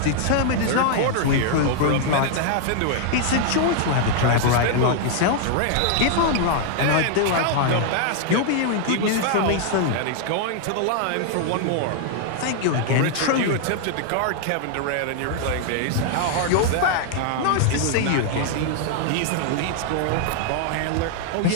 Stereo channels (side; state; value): both; different; correlation 0.00